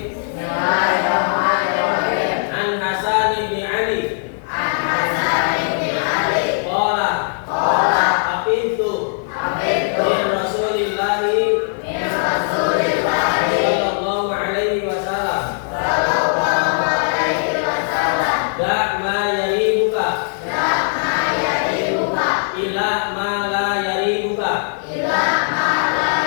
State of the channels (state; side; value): silent; right; digital silence